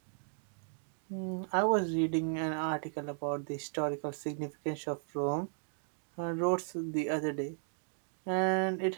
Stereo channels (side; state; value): left; silent; digital silence